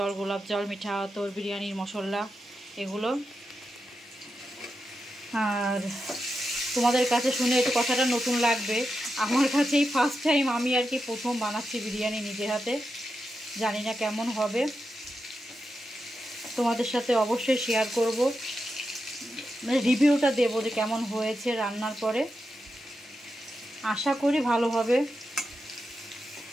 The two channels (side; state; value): both; normal; correlation 0.88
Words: গোলাপ জল, মিঠা আতর, বিরিয়ানির মশলা এগুলো। আর তোমাদের কাছে শুনে একটু কথাটা নতুন লাগবে, আমার কাছে এই ফার্স্ট টাইম আমি আর কি প্রথম বানাচ্ছি বিরিয়ানি নিজের হাতে। জানি না কেমন হবে, তোমাদের সাথে অবশ্যই শেয়ার করব, মানে রিভিউটা দেবো যে কেমন হয়েছে রান্নার পরে। আশা করি ভালো হবে।